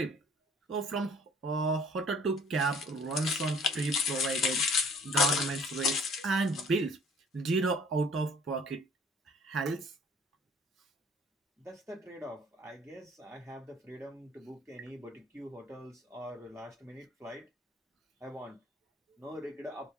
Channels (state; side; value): normal; both; correlation 0.55